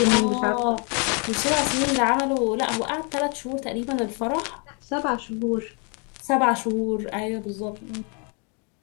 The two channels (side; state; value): right; quieter; 36.0 dB